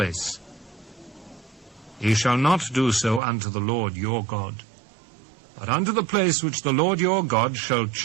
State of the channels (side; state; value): left; drops out; at 3.2 s